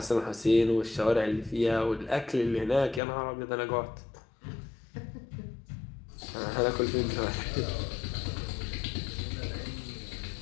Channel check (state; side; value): drops out; right; at 3.0 s